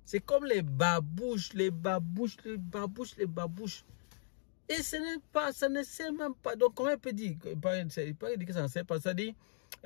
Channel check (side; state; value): right; silent; digital silence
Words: C'est comme les babouches. Et ce n'est pas, ça ne sert même pas. Donc comment on peut dire, pas dire que ça ne sert pas, ça dit,